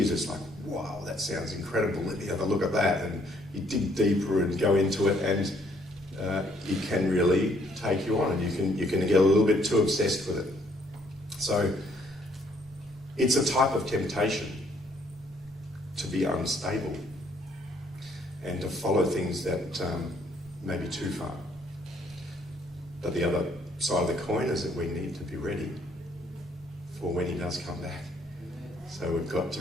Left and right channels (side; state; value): both; normal; correlation 0.66